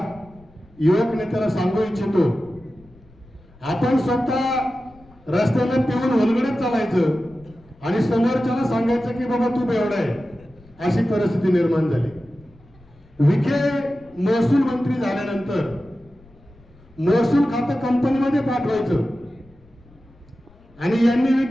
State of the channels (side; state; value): left; noise; rumble, 27 dB below the sound